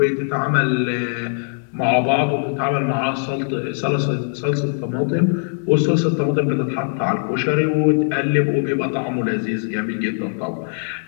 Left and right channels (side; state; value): right; silent; digital silence